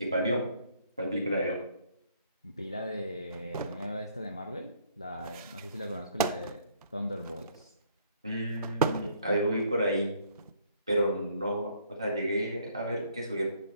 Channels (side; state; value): both; inverted; correlation -0.64